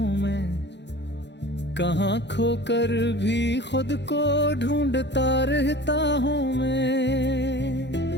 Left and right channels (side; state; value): right; late; 0.51 ms